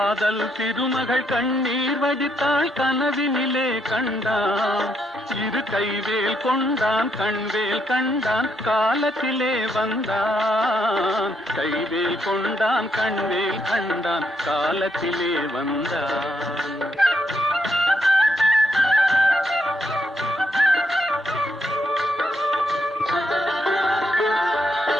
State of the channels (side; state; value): both; normal; correlation 0.77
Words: திருமகள் கண்ணீர் வடித்தாள் கனவினிலே கண்டான். இரு கைவேல் கொண்டான், கண்வேல் கண்டான், காலத்திலே வந்தான். கைவேல் கொண்டான், கண்வேல் கண்டான், காலத்திலே வந்தான்.